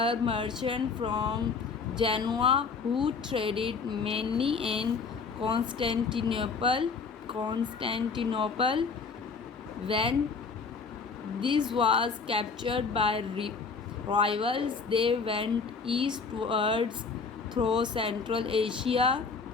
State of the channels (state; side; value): quieter; right; 5.0 dB